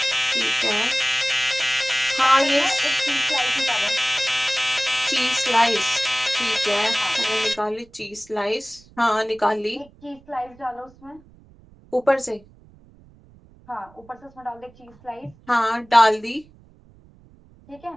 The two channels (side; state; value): right; noise; rumble, 26 dB below the sound